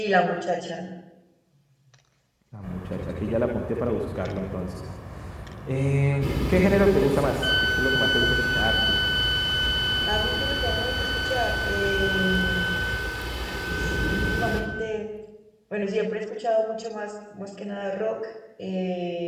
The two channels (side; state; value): both; identical; correlation 1.00